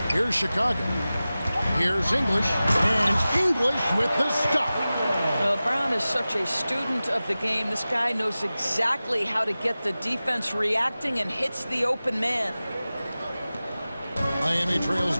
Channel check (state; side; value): inverted; both; correlation -0.96